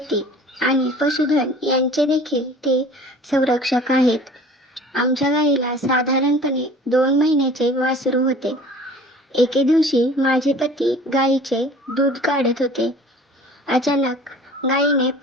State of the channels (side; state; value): both; normal; correlation 0.46